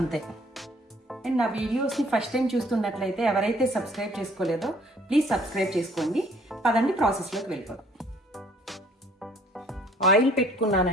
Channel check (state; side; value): normal; both; correlation 0.58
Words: అండ్ నా వీడియోస్ని ఫస్ట్ టైం చూస్తున్నట్లయితే ఎవరైతే సబ్స్క్రైబ్ చేసుకోలేదో ప్లీజ్ సబ్స్క్రైబ్ చేసుకోండి. పదండి ప్రాసెస్లోకి వెళ్ళిపోదాం. ఆయిల్